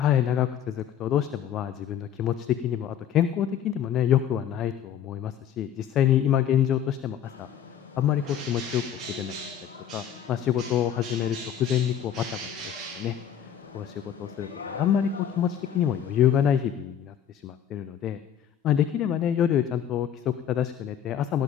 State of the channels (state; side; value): quieter; right; 9.4 dB